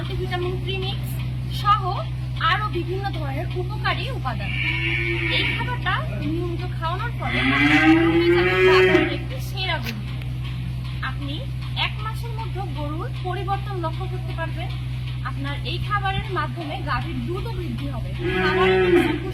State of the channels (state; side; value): identical; both; correlation 1.00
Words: প্রিমিক্স সহ আরো বিভিন্ন ধরনের উপকারী উপাদান। এই খাবারটা নিয়মিত খাওয়ানোর ফলে বাজারের একটি সেরা গরু। আপনি 1 মাসের মধ্যে গরুর পরিবর্তন লক্ষ্য করতে পারবেন। আপনার এই খাবারের মাধ্যমে গাভীর দুধও বৃদ্ধি হবে। খাবারের